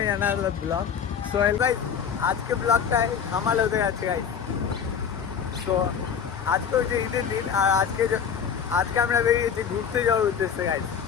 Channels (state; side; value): quieter; right; 7.4 dB